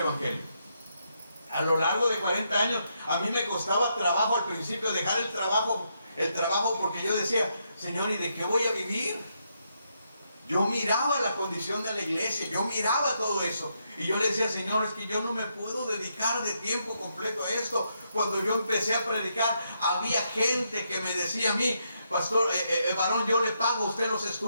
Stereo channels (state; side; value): inverted; both; correlation -0.79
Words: A lo largo de 40 años, a mí me costaba trabajo al principio dejar el trabajo porque yo decía, Señor, ¿y de qué voy a vivir? Yo miraba la condición de la iglesia, yo miraba todo eso. Y yo le decía, Señor, es que yo no me puedo dedicar de tiempo completo a esto. Cuando yo empecé a predicar, había gente que me decía a mí, pastor, varón, yo le pago a usted los